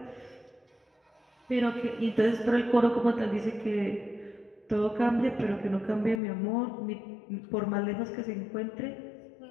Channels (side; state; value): right; drops out; at 6.2 s